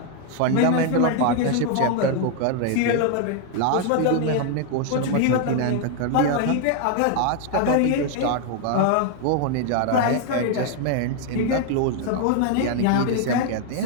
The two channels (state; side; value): different; both; correlation 0.00